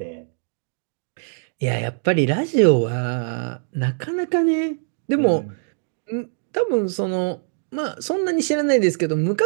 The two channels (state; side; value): silent; left; digital silence